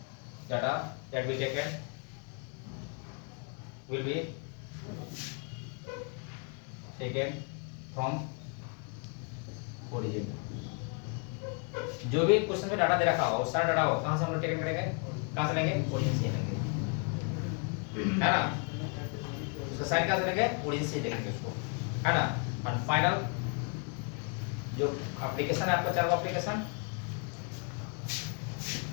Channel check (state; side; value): quieter; right; 38.6 dB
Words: data that be taken will be taken from origin. जो भी question में data दे रखा होगा, सारा data हो कहां से हम लोग टेकन करेंगे? कहां से लेंगे? ओरिजिन से लेंगे, है ना? उसका साइन कहां से लेंगे? ओरिजिन से लेंगे उसको, है ना? और फाइनल जो एप्लीकेशन है आपका, चार वो application